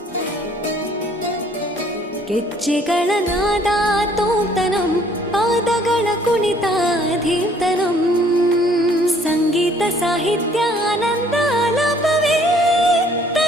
ಗೆಜ್ಜೆಗಳ ನಾದ ತೋಂತನಂ ಪಾದಗಳ ಕುಣಿತ ಧೀರ್ತನಂ ಸಂಗೀತ ಸಾಹಿತ್ಯ ಆನಂದ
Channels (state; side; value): normal; both; correlation 0.60